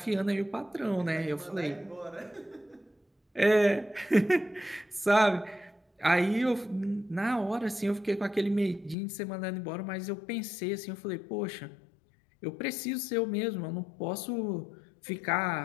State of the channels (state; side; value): drops out; right; at 9.0 s